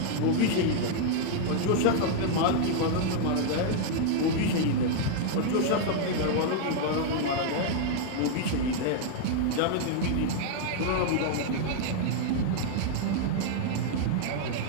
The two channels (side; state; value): both; different; correlation -0.01